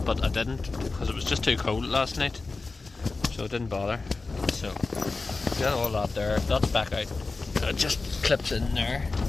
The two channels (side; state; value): right; quieter; 3.8 dB